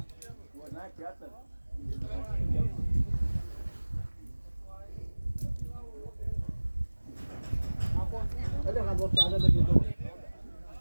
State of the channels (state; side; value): inverted; both; correlation -1.00